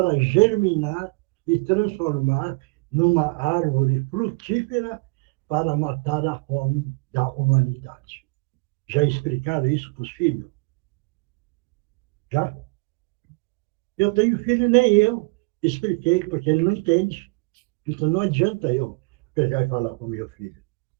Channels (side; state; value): left; quieter; 29.6 dB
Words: germinar e transformar numa árvore frutífera para matar a fome da humanidade. Já explicaram isso para os filhos? Já? Eu tenho filho, nem eu expliquei, porque ele não entende. Então não adianta eu pegar e falar para o meu filho,